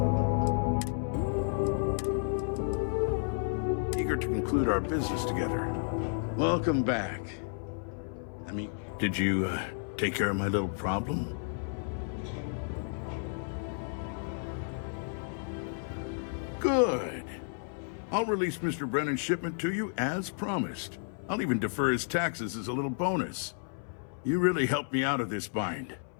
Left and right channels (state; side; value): silent; right; 56 dB below the other